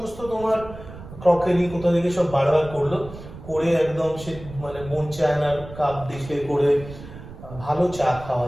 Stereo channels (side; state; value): right; noise; rumble, 15 dB below the sound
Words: তোমার ক্রকারি কোথা থেকে সব বারবার করলো, করে একদম সে মানে বোন চায়নার কাপ দেখে করে ভালো চা